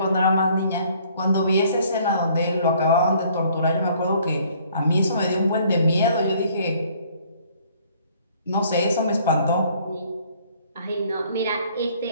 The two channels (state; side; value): inverted; both; correlation -0.60